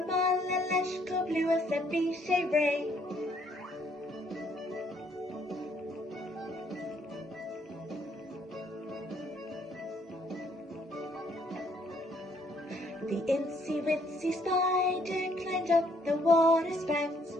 Mala, Lesh, Cob, Lewis, and Bishay, Ray. The Incy Wincy spider climbed up the water spout.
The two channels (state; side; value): normal; both; correlation 0.67